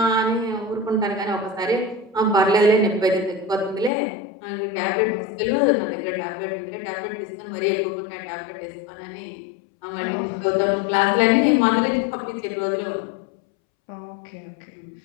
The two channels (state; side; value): drops out; right; at 3.9 s